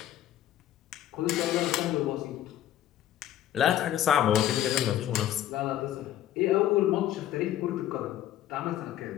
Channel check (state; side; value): quieter; right; 12.1 dB